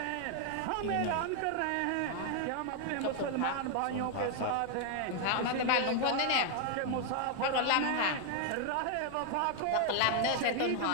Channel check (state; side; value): different; both; correlation 0.00